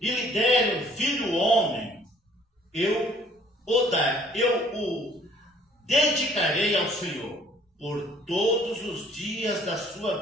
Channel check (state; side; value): normal; both; correlation 0.58